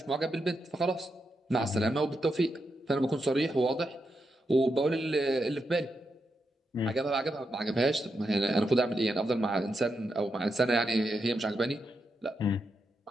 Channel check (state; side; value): normal; both; correlation 0.85